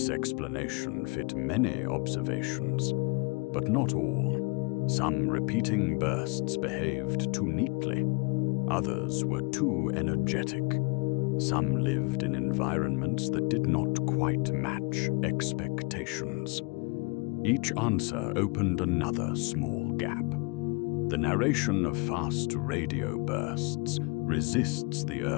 explanation fit many observations, but not all. Some repeating bursts behaved too neatly. Others were too energetic. Some lived in environments that did not quite match expectations. Each answer opened another small gap. The narration of fast radio bursts resists the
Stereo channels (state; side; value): quieter; right; 29.7 dB